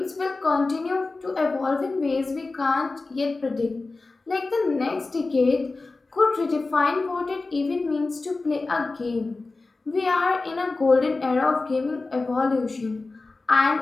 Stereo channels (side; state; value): right; quieter; 3.6 dB